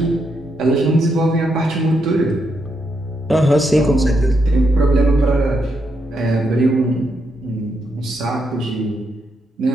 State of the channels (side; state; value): both; normal; correlation 0.80